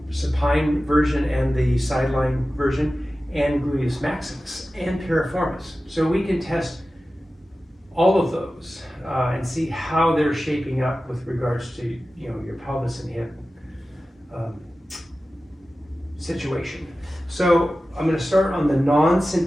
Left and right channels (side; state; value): both; normal; correlation 0.95